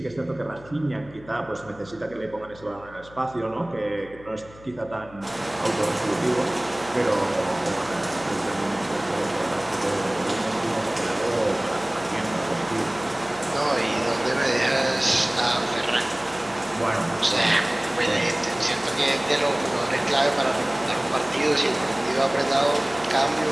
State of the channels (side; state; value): left; noise; hum, 21 dB below the sound